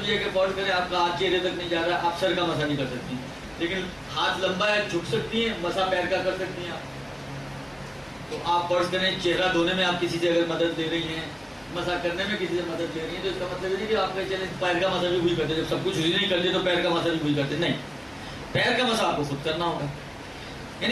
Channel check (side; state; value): both; identical; correlation 1.00